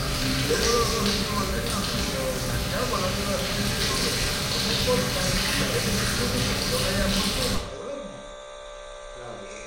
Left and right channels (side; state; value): both; identical; correlation 1.00